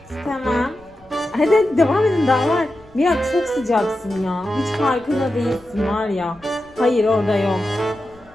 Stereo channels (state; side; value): noise; left; rumble, 28 dB below the sound